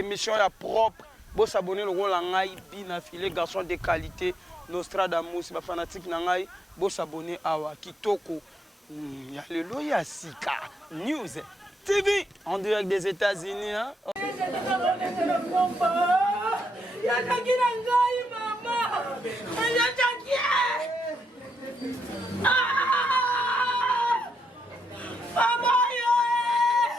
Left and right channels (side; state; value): both; normal; correlation 0.81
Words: à propre bo s'abonner le rôle en ngai bina filé garçon de qualité Nostradamus ba fanatique na ngai bo s'abonner awa kitoko Yalelo ya Sika News TV en direct des États-Unis hein.